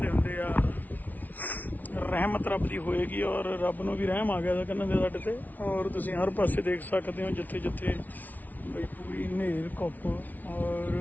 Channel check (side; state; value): right; late; 0.078 ms